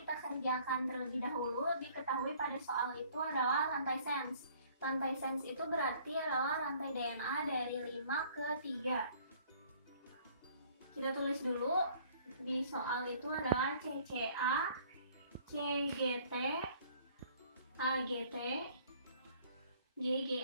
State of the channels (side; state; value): both; inverted; correlation -0.57